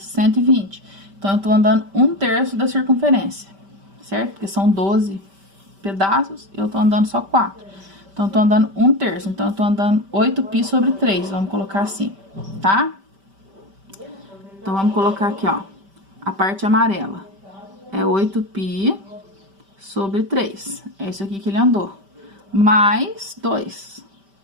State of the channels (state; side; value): late; left; 5.1 ms